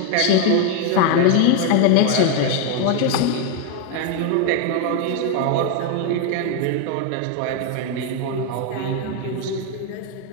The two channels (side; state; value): both; different; correlation 0.01